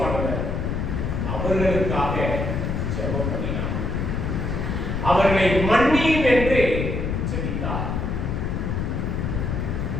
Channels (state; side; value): noise; left; rumble, 1 dB below the sound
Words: அவர்களுக்காக ஜெபம் பண்ணினார். அவர்களை மன்னியும் என்று ஜெபித்தார்.